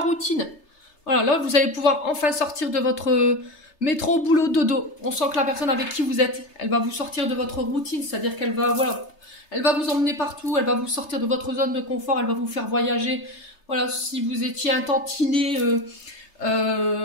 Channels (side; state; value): right; late; 3.3 ms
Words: Voilà, là vous allez pouvoir enfin sortir de votre métro, boulot, dodo. On sent que la personne avec qui vous êtes, elle va vous sortir de votre routine, c'est-à-dire qu'elle va, voilà, elle va vous emmener partout, elle va vous sortir de votre zone de confort, elle va vous faire voyager. Voilà, si vous étiez un tantinet